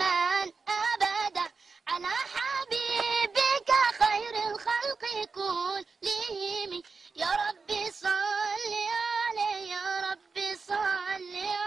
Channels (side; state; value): left; quieter; 4.7 dB